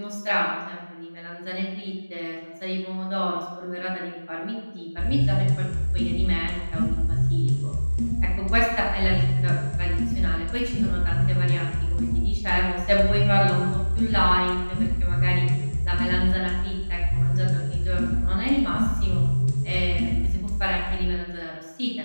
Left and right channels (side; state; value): both; inverted; correlation -1.00